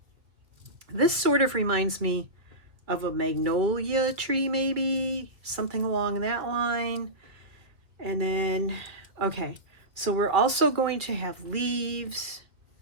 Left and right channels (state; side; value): late; left; 2.0 ms